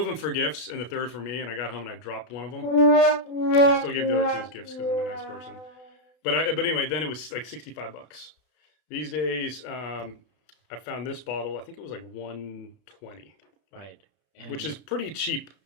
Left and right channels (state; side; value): late; right; 32 ms